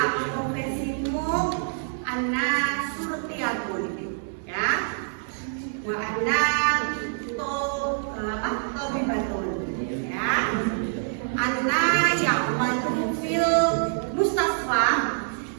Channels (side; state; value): left; silent; 61 dB below the other